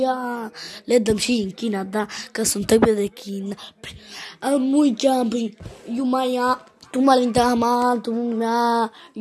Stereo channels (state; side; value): identical; both; correlation 1.00